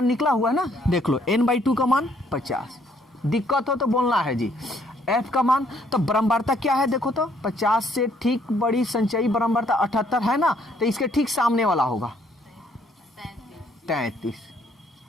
निकला हुआ है ना, देख लो n/2 का मान 50, दिक्कत हो तो बोलना है जी। F का मान, तो बारंबारता क्या है देखो तो, 50 से ठीक बड़ी संचयी बारंबारता 78 है ना, तो इसके ठीक सामने वाला होगा 33।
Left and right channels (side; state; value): both; normal; correlation 0.66